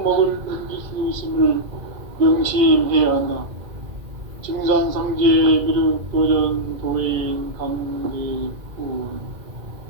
넘길 수 있음을 명심해야 한다. 증산성제 미륵도전 도인 강대군.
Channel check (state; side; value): late; left; 1.9 ms